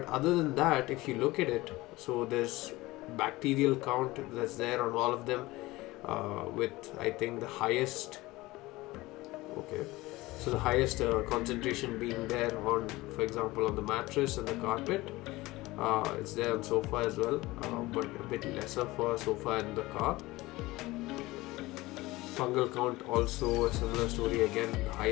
other than that, if you look at it, so there's bacterial count that's there on all of them, with I think the highest so the highest concentration being there on, for example, on the mattress and the carpet. It's there on sofa as well, but a bit lesser for sofa and the car. Fungal count also a similar story again, the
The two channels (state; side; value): quieter; right; 19.8 dB